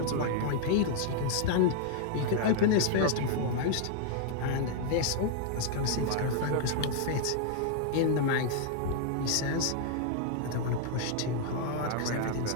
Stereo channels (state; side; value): different; both; correlation 0.00